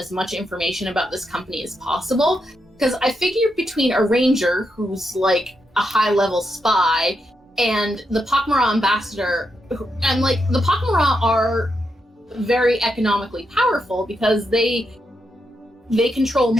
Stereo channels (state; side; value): normal; both; correlation 0.83